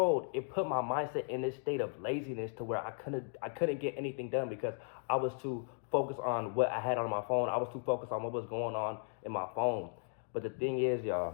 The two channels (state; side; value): silent; right; 54 dB below the other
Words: it put my mindset in this state of laziness to where I couldn't get anything done because I was too focused on what I had on my phone. I was too focused on what was going on in my phone. But the thing is,